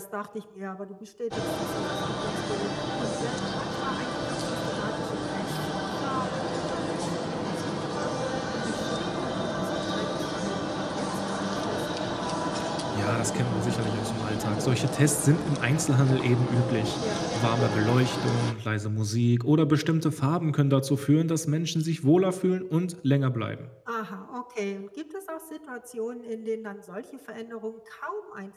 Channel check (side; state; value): both; identical; correlation 1.00